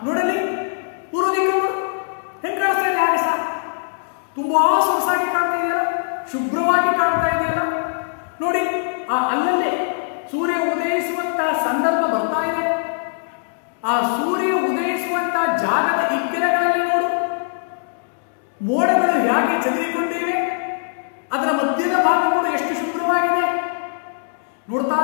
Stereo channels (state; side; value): silent; right; digital silence